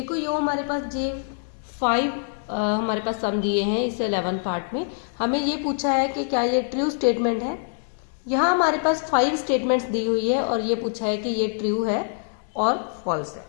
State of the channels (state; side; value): silent; right; digital silence